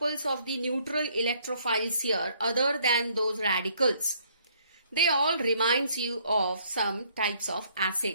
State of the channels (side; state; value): both; inverted; correlation -0.65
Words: of the neutral electrophiles here, other than those radicals, they all reminds you of some types of